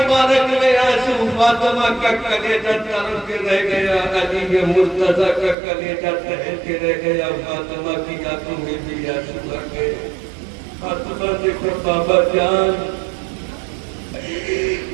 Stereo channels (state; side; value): drops out; left; at 5.6 s